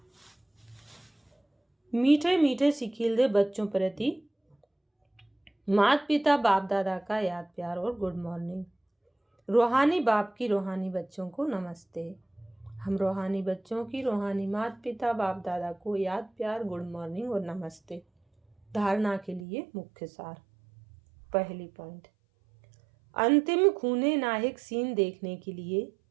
मीठे मीठे सिकील बच्चों प्रति माता पिता बाप दादा का याद प्यार और गुड मॉर्निंग। रूहानी बाप की रूहानी बच्चों को नमस्ते। हम रूहानी बच्चों की रूहानी माता पिता बाप दादा को याद प्यार, गुड मॉर्निंग और नमस्ते। धारणा के लिए मुख्य सार। पहली पॉइंट, अंतिम खूने नायक सीन देखने के लिए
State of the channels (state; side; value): drops out; left; at 19.5 s